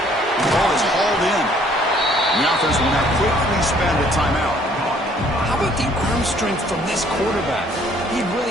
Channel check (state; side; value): normal; both; correlation 0.61